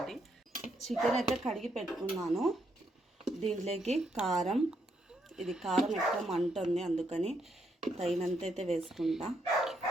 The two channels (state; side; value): normal; both; correlation 0.77